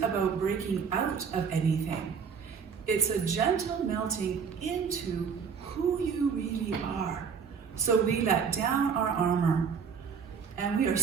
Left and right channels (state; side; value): quieter; left; 6.4 dB